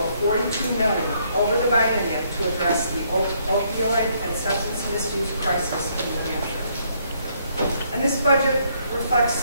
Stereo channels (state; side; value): inverted; both; correlation -0.70